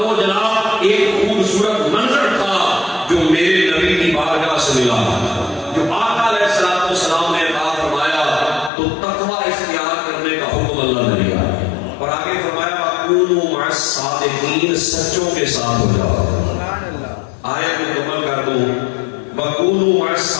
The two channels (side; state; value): right; drops out; at 8.7 s